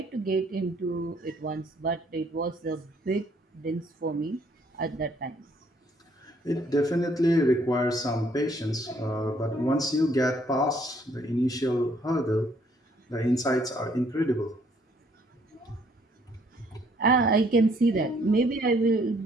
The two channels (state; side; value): normal; both; correlation 0.65